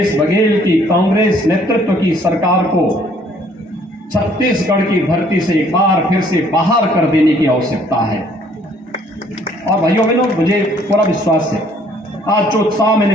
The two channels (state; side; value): normal; both; correlation 0.61